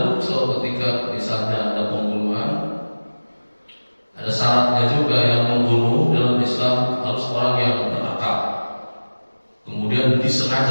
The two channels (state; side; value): inverted; both; correlation -1.00